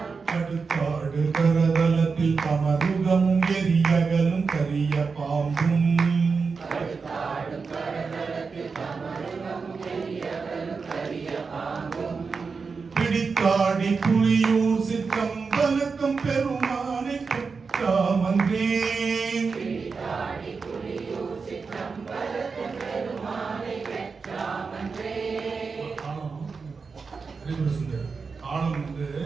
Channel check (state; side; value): quieter; left; 4.9 dB